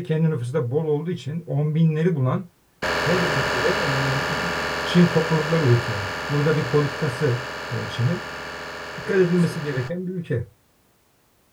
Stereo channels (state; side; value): identical; both; correlation 1.00